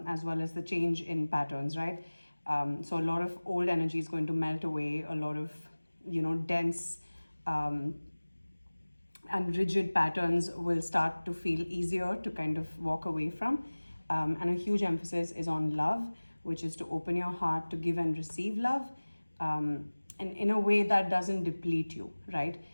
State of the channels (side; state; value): both; inverted; correlation -1.00